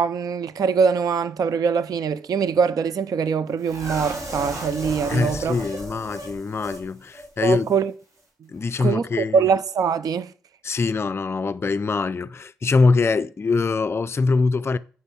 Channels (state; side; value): normal; both; correlation 0.72